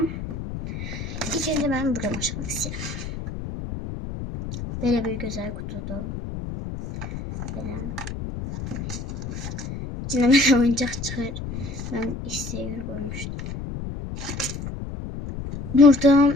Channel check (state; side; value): noise; left; rumble, 7 dB below the sound